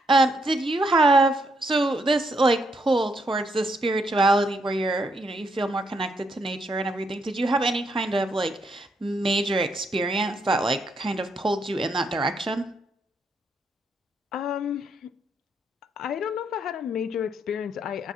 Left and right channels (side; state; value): both; normal; correlation 0.76